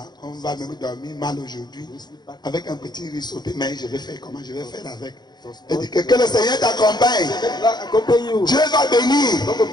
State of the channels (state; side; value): late; right; 0.21 ms